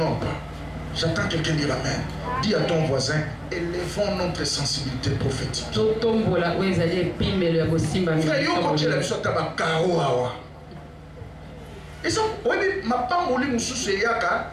pas. J'attends quelqu'un dire Amen. Dis à ton voisin, élevons notre sensibilité prophétique. Frère, yo quand tu as besoin de caro awa. Et ça, oui, ma pas mouli mususu yaka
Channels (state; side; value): identical; both; correlation 1.00